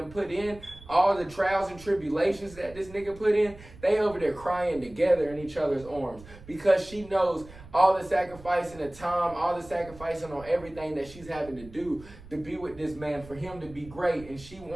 put in, all the trials and tribulations that this nigga put in, they over there crying together in each other's arms. Because she knows all the sacrificing of time, all the sacrificing on everything that she's having to do to be with this man, for him to be great. And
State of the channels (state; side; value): noise; right; rumble, 19 dB below the sound